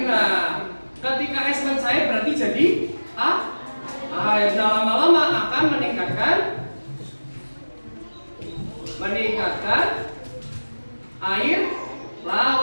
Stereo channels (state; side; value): inverted; both; correlation -1.00